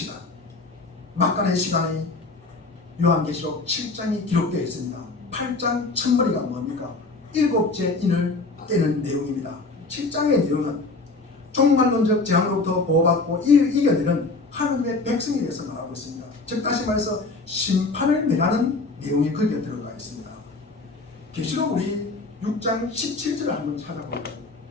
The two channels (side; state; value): right; quieter; 3.5 dB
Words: 막간의 시간이 요한계시록 7장이 기록되어 있습니다. 8장 첫머리가 뭡니까? 7째 인을 떼는 내용입니다. 7장의 내용은 종말론적 재앙으로부터 보호받고 이겨내는 하나님의 백성에 대해서 말하고 있습니다. 즉 다시 말해서 심판을 면하는 내용이 거기에 들어가 있습니다. 계시록 우리 6장 17절을 한번 찾아볼까요?